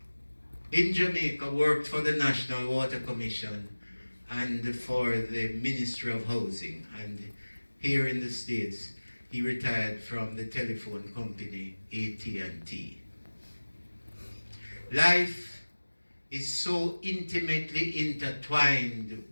in Jamaica worked for the National Water Commission and for the Ministry of Housing, and here in the States he retired from the telephone company AT&T. Life is so intimately intertwined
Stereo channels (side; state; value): both; inverted; correlation -1.00